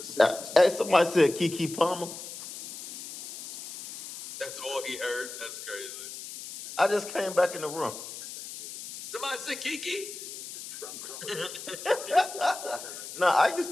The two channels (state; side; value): noise; left; hiss, 11 dB below the sound